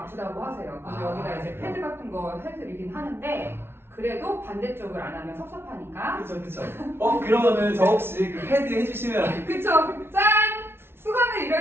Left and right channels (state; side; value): late; left; 0.12 ms